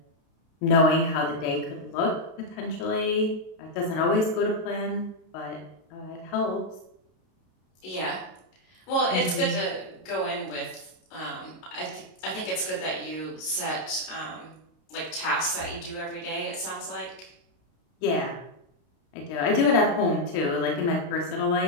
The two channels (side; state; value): right; late; 32 ms